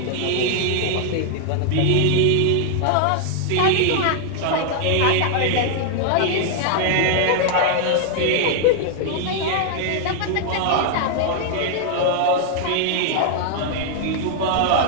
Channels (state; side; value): different; both; correlation 0.00